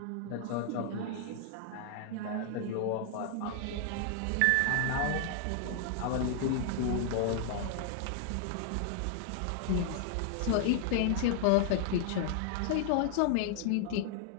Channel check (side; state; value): both; different; correlation 0.00